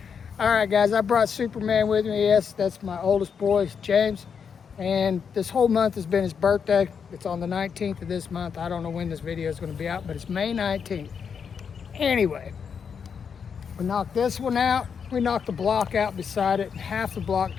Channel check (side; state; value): right; quieter; 6.7 dB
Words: All right, guys, I brought Superman with me. Yes, that's my oldest boy, James. And this whole month has been his birthday. It's on the 19th of this month. I don't know when this video is going to be out, but it's May 19th. Anyway, we knocked this one out. We knocked the block out beside it, half the block